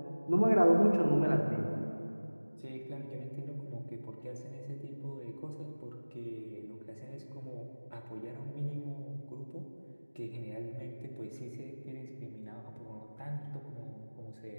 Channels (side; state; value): both; inverted; correlation -1.00